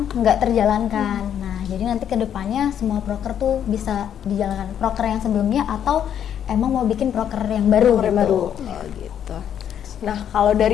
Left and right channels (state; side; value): quieter; right; 9.4 dB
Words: nggak terjalankan. Nah, jadi nanti kedepannya semua proker tuh bisa dijalankan, proker yang sebelumnya atau emang mau bikin proker yang baru Proker gitu. baru. Oh gitu. Nah, kalau